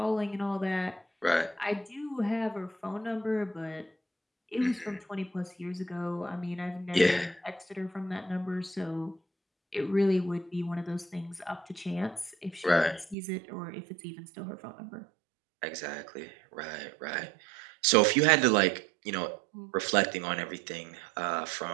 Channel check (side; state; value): left; drops out; at 13.2 s